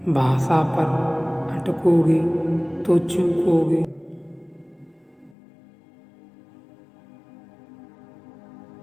भाषा पर अटकोगे तो चूकोगे।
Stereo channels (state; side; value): drops out; right; at 5.4 s